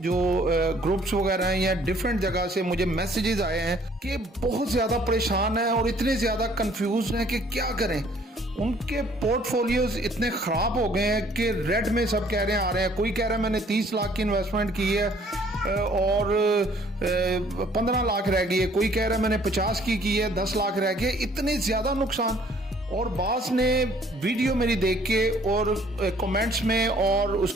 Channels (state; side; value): normal; both; correlation 0.59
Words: ग्रुप्स वगैरह हैं या डिफरेंट जगह से मुझे मैसेजेस आए हैं कि बहुत ज़्यादा परेशान हैं और इतने ज़्यादा कंफ्यूज हैं कि क्या करें। उनके पोर्टफोलियोज इतने ख़राब हो गए हैं कि रेड में सब कह रहे हैं आ रहे हैं। कोई कह रहा है मैंने 30 लाख की इन्वेस्टमेंट की है और 15 लाख रह गई है। कोई कह रहा है मैंने 50 की है 10 लाख रह गए। इतने ज़्यादा नुकसान। और बास ने वीडियो मेरी देख के और कमेंट्स में और